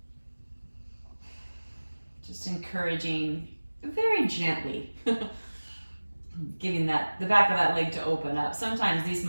Just encouraging very gently, giving the back of that leg to open up. Sometimes these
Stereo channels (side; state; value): both; inverted; correlation -1.00